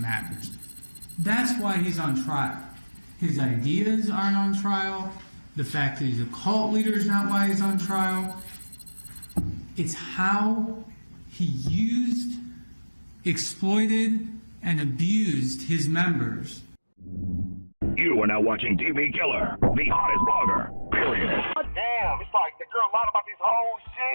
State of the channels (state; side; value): inverted; both; correlation -1.00